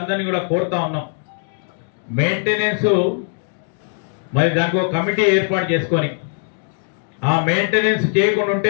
కూడా కోరుతా ఉన్నాం. మెయింటెనెన్స్ మరి దానికి ఒక కమిటీ ఏర్పాటు చేసుకొని ఆ మెయింటెనెన్స్ చేయకుండా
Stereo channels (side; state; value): right; silent; 66 dB below the other